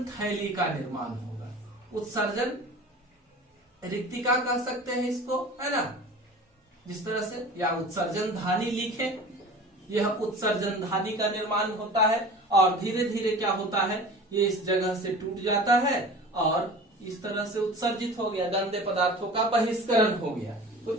थैली का निर्माण होगा। उत्सर्जन रिक्तिका कह सकते हैं इसको, है ना, जिस तरह से, या उत्सर्जन धानी लिखे, यह उत्सर्जन धानी का निर्माण होता है और धीरे धीरे क्या होता है, ये इस जगह से टूट जाता है और इस तरह से उत्सर्जित हो गया, गंदे पदार्थों का बहिष्करण हो गया। तो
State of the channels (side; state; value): both; normal; correlation 0.39